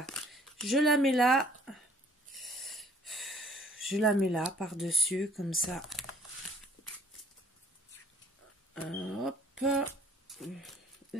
Je la mets là. Je la mets là, par-dessus, comme ça. Hop.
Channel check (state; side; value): normal; both; correlation 0.58